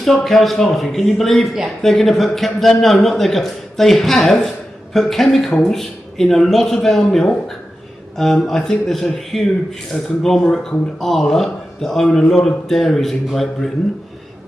cows farting. Can you believe Yeah. they're going to put? They have put chemicals in a lot of our milk. I think there's a huge conglomerate called Arla that own a lot of dairies in Great Britain,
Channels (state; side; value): normal; both; correlation 0.91